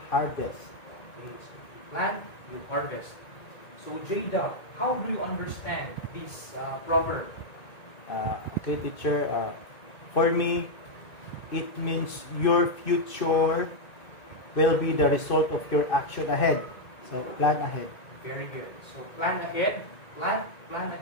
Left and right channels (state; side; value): late; right; 2.6 ms